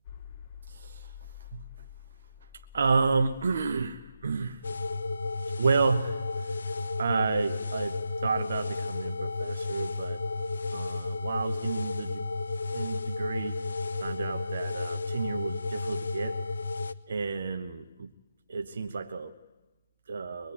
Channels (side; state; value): both; inverted; correlation -0.87